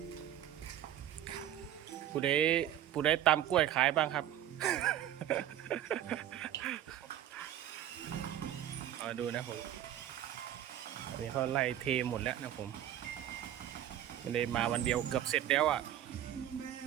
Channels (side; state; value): left; quieter; 11.6 dB